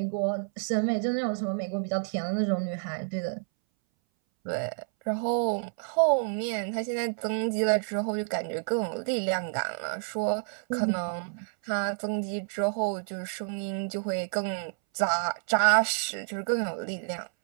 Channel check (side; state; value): left; silent; 58 dB below the other